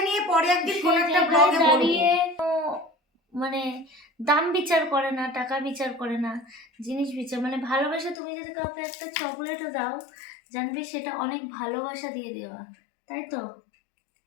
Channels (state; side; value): drops out; right; at 8.2 s